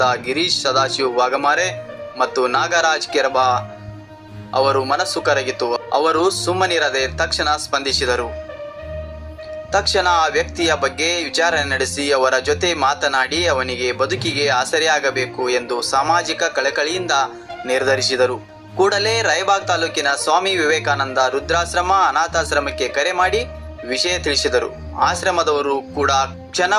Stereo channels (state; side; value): identical; both; correlation 1.00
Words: ಗಿರೀಶ್ ಸದಾಶಿವ್ ವಾಗಮಾರೆ ಮತ್ತು ನಾಗರಾಜ್ ಕೆರಬ ಅವರು ಮನಸ್ಸು ಕರಗಿತು. ಅವರು ಸುಮ್ಮನಿರದೆ ತಕ್ಷಣ ಸ್ಪಂದಿಸಿದರು. ತಕ್ಷಣ ಆ ವ್ಯಕ್ತಿಯ ಬಗ್ಗೆ ವಿಚಾರಣೆ ನಡೆಸಿ ಅವರ ಜೊತೆ ಮಾತನಾಡಿ ಅವನಿಗೆ ಬದುಕಿಗೆ ಆಸರೆಯಾಗಬೇಕು ಎಂದು ಸಾಮಾಜಿಕ ಕಳಕಳಿಯಿಂದ ನಿರ್ಧರಿಸಿದರು. ಕೂಡಲೇ ರಾಯಬಾಗ್ ತಾಲೂಕಿನ ಸ್ವಾಮಿ ವಿವೇಕಾನಂದ ವೃದ್ಧಾಶ್ರಮ ಅನಾಥಾಶ್ರಮಕ್ಕೆ ಕರೆ ಮಾಡಿ ವಿಷಯ ತಿಳಿಸಿದರು. ಆಶ್ರಮದವರು ಕೂಡ